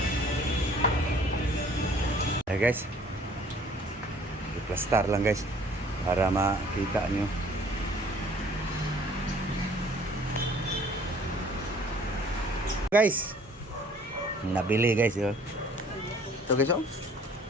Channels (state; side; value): normal; both; correlation 0.54